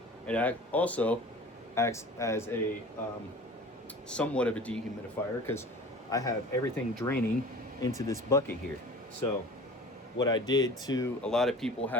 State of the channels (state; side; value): normal; both; correlation 0.41